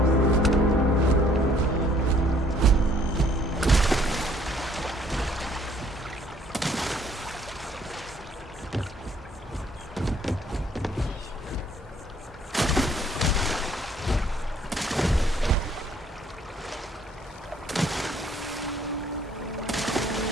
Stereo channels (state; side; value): normal; both; correlation 0.61